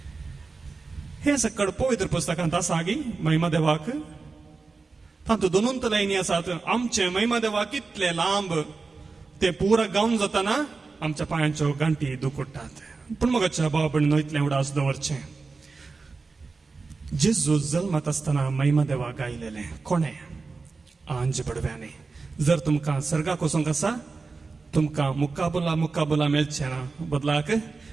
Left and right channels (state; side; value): quieter; left; 4.2 dB